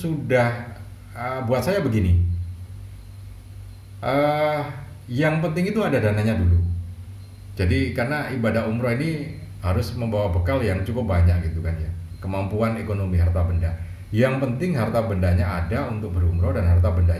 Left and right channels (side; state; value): both; identical; correlation 1.00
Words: buat saya begini, yang penting itu ada dananya dulu. Jadi karena ibadah umroh ini harus membawa bekal yang cukup banyak gitu kan ya, kemampuan ekonomi harta benda. Yang penting harta bendanya ada untuk berumroh, dan harta